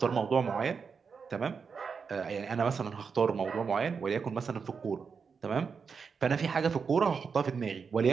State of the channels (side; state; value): left; quieter; 5.7 dB